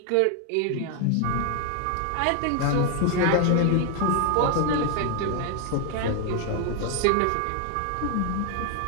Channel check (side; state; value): both; different; correlation 0.00